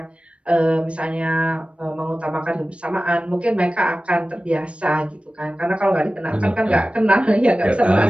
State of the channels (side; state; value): left; late; 0.061 ms